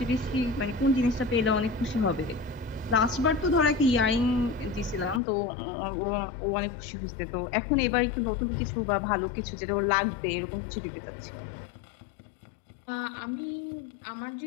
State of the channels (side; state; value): right; drops out; at 5.2 s